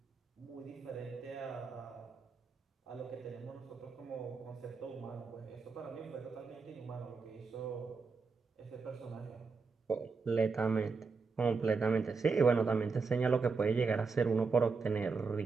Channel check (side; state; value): left; quieter; 4.7 dB